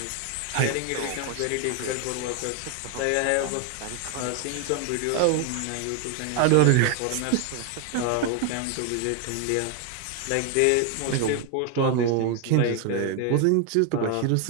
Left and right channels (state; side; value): different; both; correlation 0.01